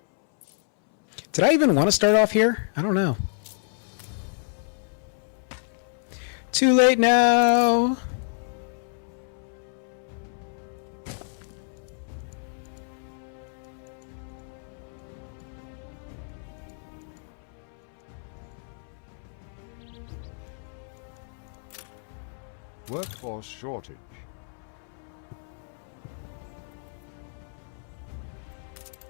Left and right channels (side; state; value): right; silent; 59 dB below the other